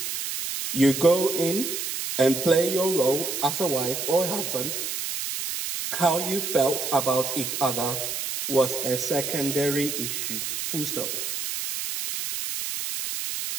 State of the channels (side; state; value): right; noise; hiss, 4 dB below the sound